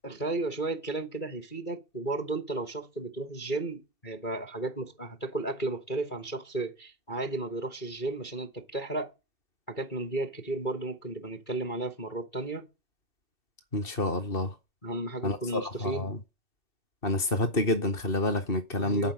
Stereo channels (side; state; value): right; late; 2.7 ms